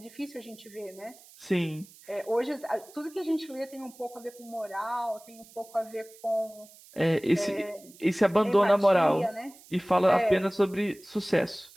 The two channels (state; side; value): noise; right; hiss, 23 dB below the sound